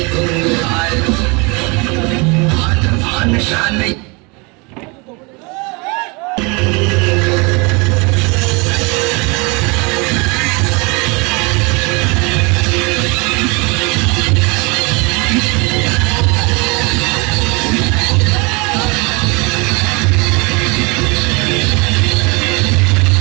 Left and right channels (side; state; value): left; quieter; 29.1 dB